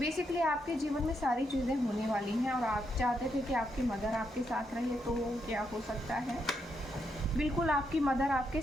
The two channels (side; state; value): both; normal; correlation 0.80